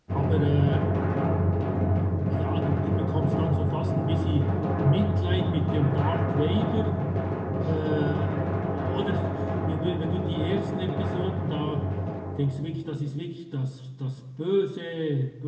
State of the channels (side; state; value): both; identical; correlation 1.00